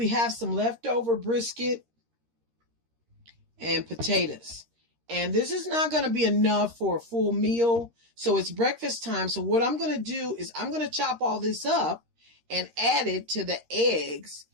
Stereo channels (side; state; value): left; late; 13 ms